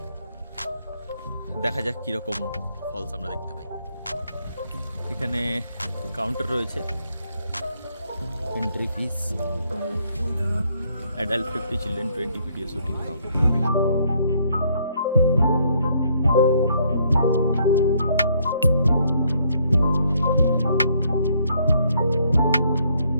দেখা যাক কীরকম ফলস আমরা দেখতে পাই। এখানে কাউন্টার রয়েছে, entry fees, adult 50, children 20, video shooting হবে।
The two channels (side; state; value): both; inverted; correlation -0.68